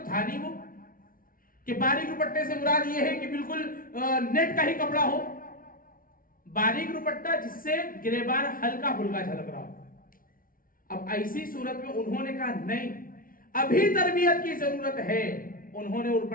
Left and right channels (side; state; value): right; late; 0.41 ms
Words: تھا نہیں وہ کہ باریک روپٹے سے مراد یہ ہے کہ بالکل نیٹ کا ہی کپڑا ہو. باریک روپٹہ جس سے گریبان ہلکا پھلکا جھلک رہا ہو. اب ایسی صورت میں انہوں نے کہا نہیں، ابھی تربیت کی ضرورت ہے. انہوں نے وہ